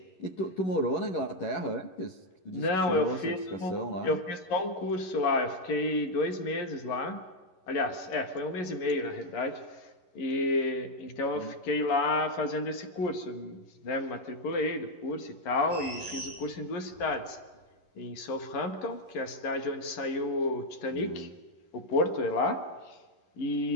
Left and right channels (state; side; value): late; right; 11 ms